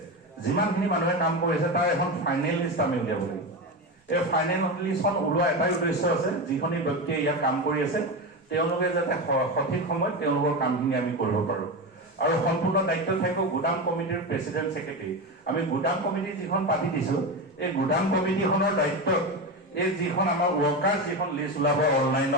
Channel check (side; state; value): both; normal; correlation 0.19